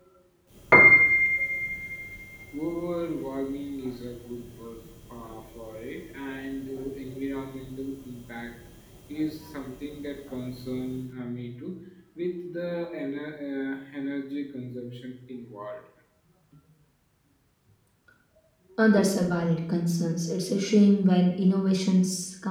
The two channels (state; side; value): identical; both; correlation 1.00